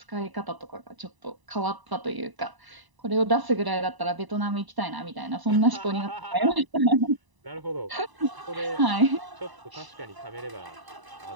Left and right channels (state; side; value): late; left; 1.0 ms